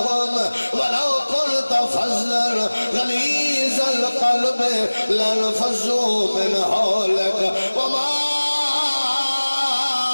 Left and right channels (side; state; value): both; inverted; correlation -1.00